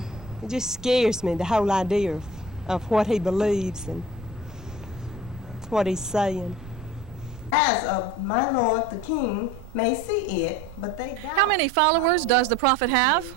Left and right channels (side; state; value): right; noise; rumble, 16 dB below the sound